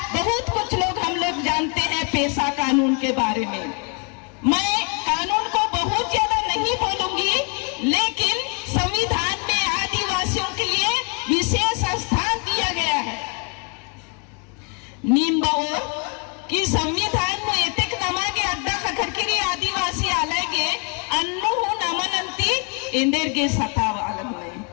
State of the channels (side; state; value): right; quieter; 36.5 dB